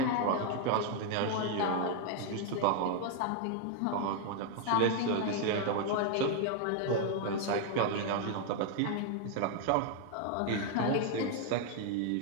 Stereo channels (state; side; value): different; both; correlation 0.00